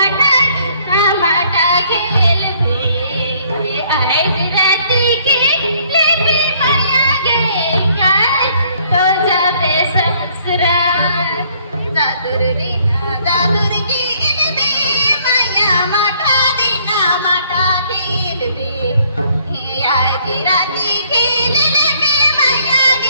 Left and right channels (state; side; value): inverted; both; correlation -0.63